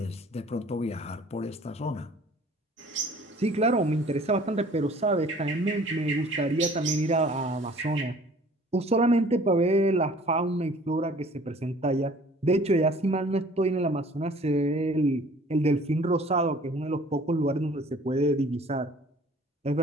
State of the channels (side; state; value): both; normal; correlation 0.52